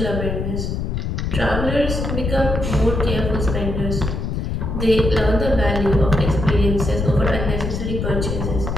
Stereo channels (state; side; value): noise; left; rumble, 2 dB below the sound